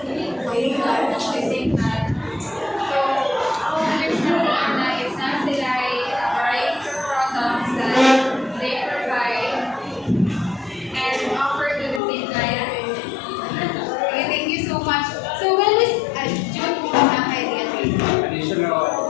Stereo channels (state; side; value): drops out; right; at 12.0 s